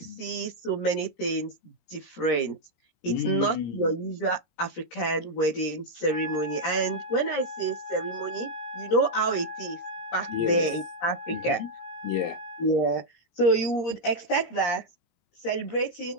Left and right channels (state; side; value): late; right; 17 ms